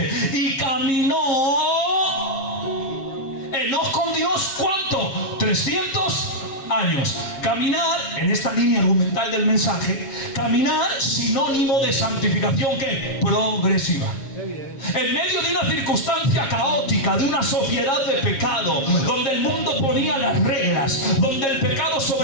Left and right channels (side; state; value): right; late; 7.3 ms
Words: y caminó Enoc con Dios, ¿cuánto? 300 años. Caminar, en esta línea argumental del mensaje, caminar sinónimo de santificación, ¿qué? Progresiva. En medio de una circunstancia caótica, de una sociedad de pecado, donde el mundo ponía las reglas, donde el pecado